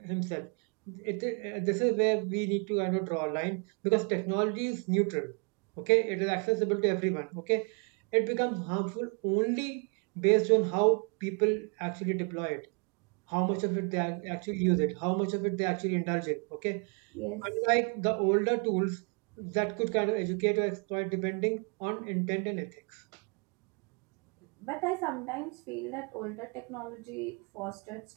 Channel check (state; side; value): quieter; left; 36.3 dB